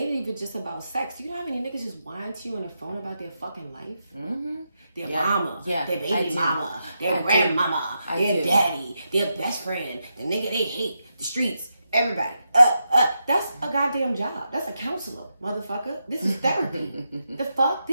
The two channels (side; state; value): both; inverted; correlation -0.85